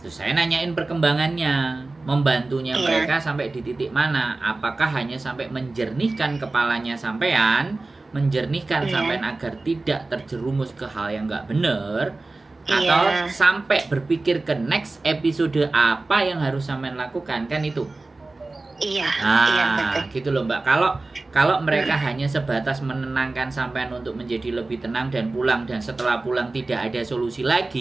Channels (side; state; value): left; quieter; 3.3 dB